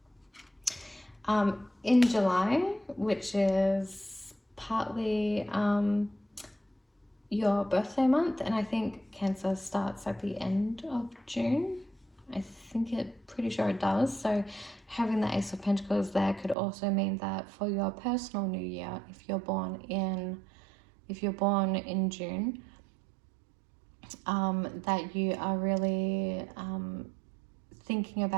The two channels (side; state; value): left; drops out; at 16.6 s